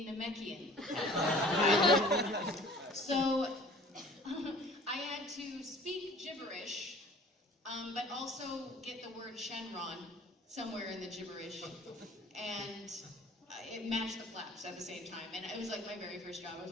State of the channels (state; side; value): normal; both; correlation 0.48